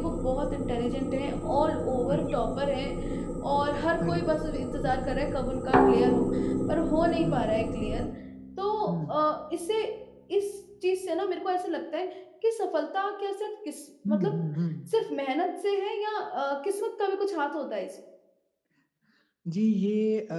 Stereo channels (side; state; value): both; identical; correlation 1.00